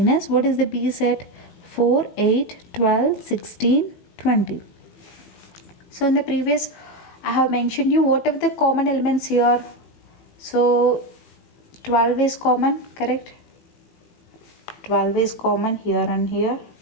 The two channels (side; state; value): right; late; 18 ms